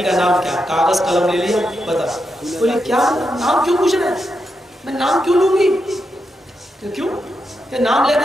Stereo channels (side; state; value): both; normal; correlation 0.85